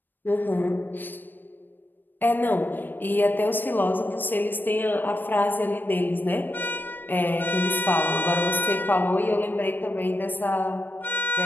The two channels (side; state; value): right; late; 0.092 ms